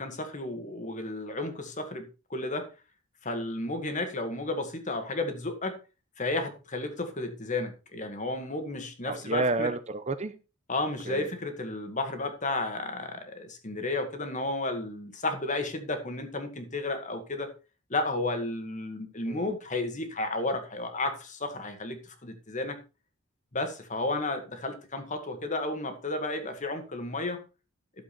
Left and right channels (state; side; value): normal; both; correlation 0.00